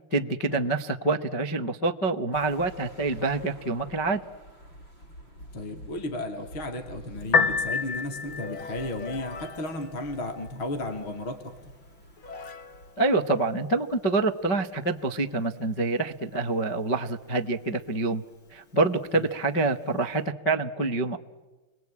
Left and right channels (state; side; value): late; right; 6.1 ms